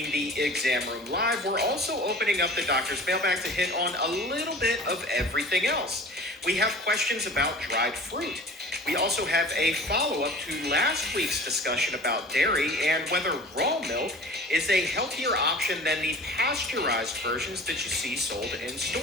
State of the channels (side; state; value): both; normal; correlation 0.42